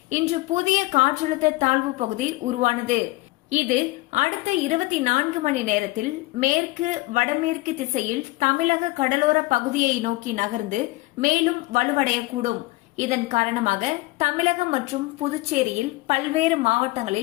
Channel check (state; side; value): quieter; right; 21.2 dB